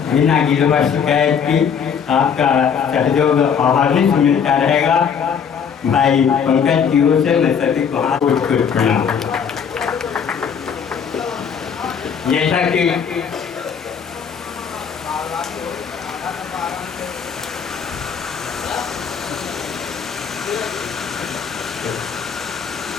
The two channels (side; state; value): right; quieter; 7.1 dB